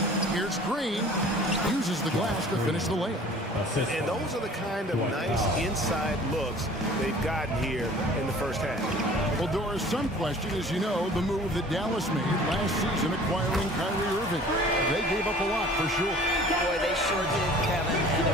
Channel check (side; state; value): both; normal; correlation 0.48